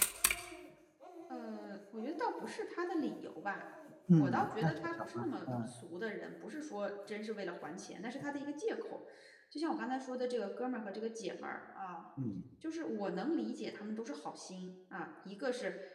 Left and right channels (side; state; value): both; identical; correlation 1.00